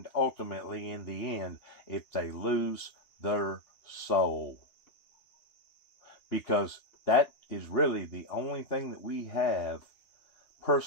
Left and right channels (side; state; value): right; late; 2.8 ms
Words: ultimately in the end if they lose their soul? Because that is really the only thing that we have